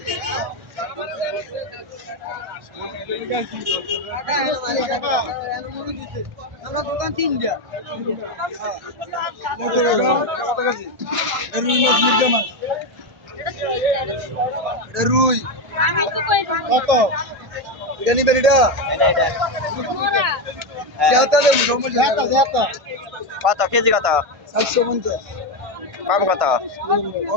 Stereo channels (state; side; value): late; left; 1.4 ms